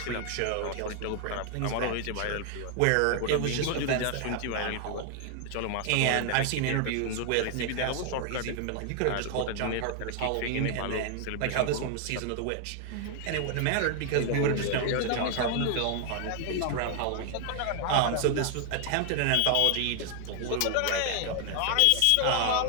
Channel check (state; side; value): different; both; correlation 0.00